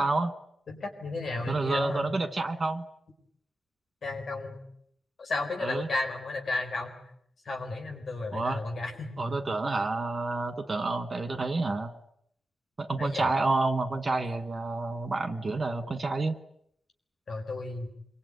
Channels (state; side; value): normal; both; correlation 0.90